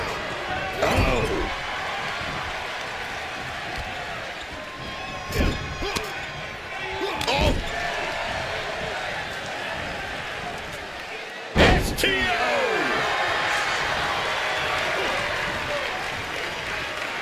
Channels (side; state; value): both; identical; correlation 1.00